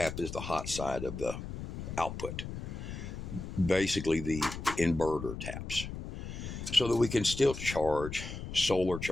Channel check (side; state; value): left; noise; rumble, 8 dB below the sound